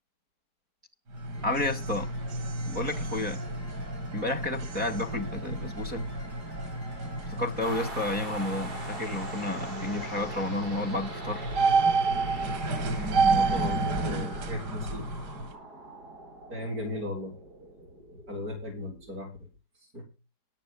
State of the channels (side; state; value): left; late; 4.2 ms